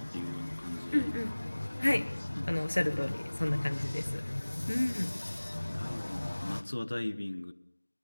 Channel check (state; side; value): inverted; both; correlation -1.00